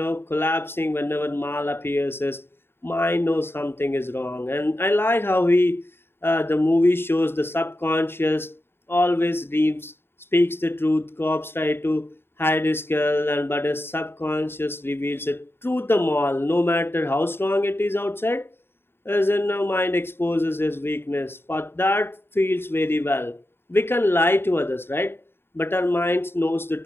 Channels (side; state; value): right; late; 0.11 ms